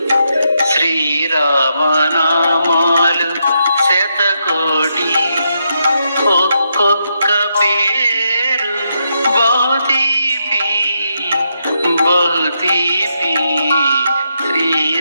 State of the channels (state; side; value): inverted; both; correlation -0.81